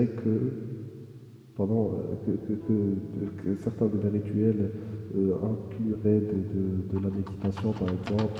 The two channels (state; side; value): identical; both; correlation 1.00